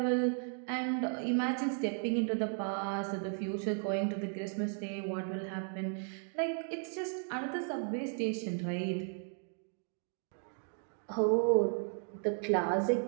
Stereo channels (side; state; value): left; silent; 54 dB below the other